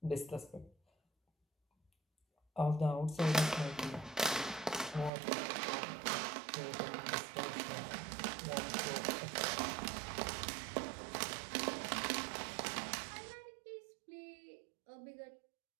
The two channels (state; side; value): drops out; left; at 5.1 s